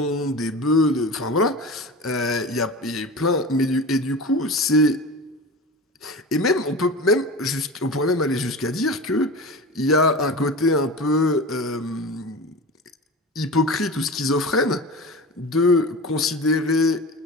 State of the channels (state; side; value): normal; both; correlation 0.31